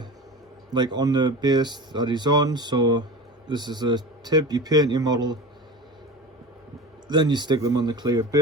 the base that he's on. So this is a tip: you paint your model, then you stick them on the clear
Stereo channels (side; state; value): both; normal; correlation 0.31